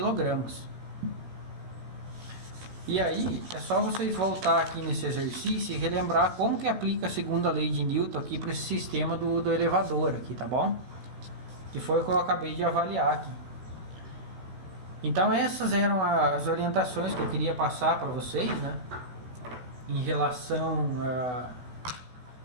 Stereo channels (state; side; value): late; left; 16 ms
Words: E aí é só vocês voltar aqui nesse exercício e relembrar como que aplica a segunda lei de Newton aqui para esse sistema do elevador aqui, tá bom? Que foi o que eu acabei de avaliar aqui. Então essas eram as orientações que eu queria passar para vocês, né? Em relação